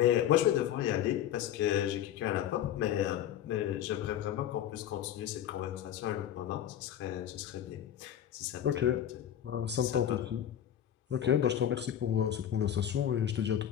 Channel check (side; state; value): right; quieter; 10.5 dB